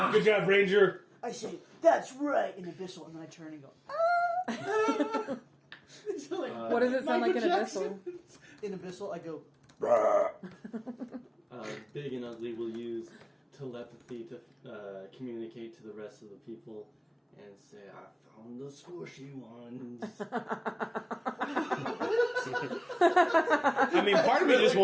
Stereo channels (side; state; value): both; identical; correlation 1.00